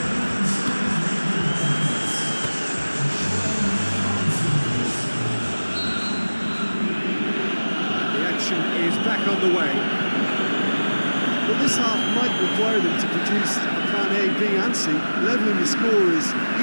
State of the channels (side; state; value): both; inverted; correlation -1.00